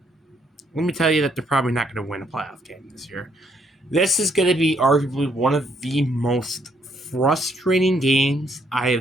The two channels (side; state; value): both; normal; correlation 0.70